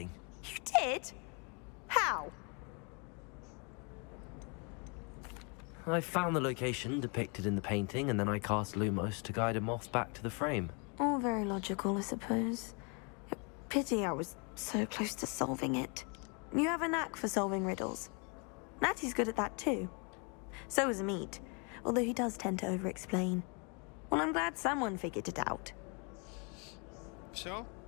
You did? How? I found the location depicted in the painting, and then I cast Lumos to guide a moth back to the frame. All very logical, I suppose. Pity I was so close to solving it. You have a knack for solving riddles. Natty's good at that too. So is Meat, although he does tend to over-explain. Well, I'm glad someone figured it out. Все?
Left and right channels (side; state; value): right; quieter; 34.8 dB